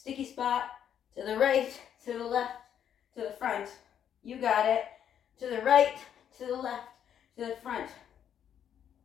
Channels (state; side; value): quieter; right; 9.2 dB